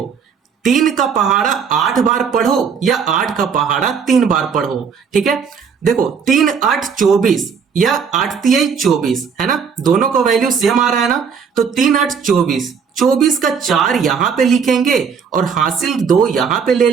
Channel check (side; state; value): left; quieter; 6.4 dB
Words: 3 का पहाड़ा 8 बार पढ़ो या 8 का पहाड़ा 3 बार पढ़ो। ठीक है, देखो 3 8 24 या 8 तिहाई 24, है ना, दोनों का वैल्यू सेम आ रहा है ना। तो 3 8 24, 24 का 4 यहां पे लिखेंगे और हासिल 2 यहां पे ले